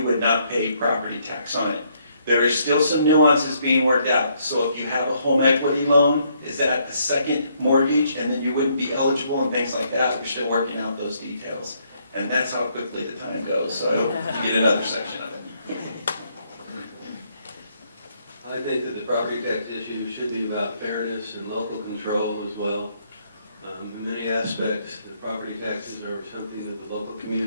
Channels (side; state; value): both; inverted; correlation -0.71